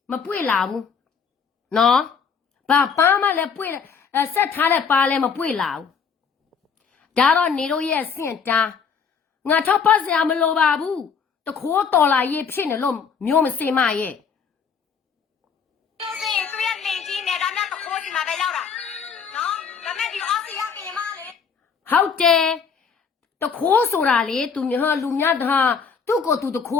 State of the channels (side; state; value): right; quieter; 6.2 dB